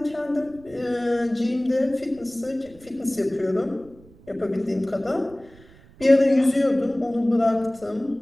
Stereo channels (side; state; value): right; noise; rumble, 24 dB below the sound